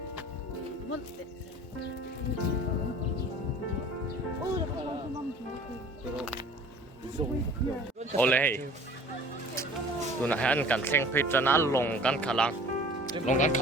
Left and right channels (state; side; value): normal; both; correlation 0.47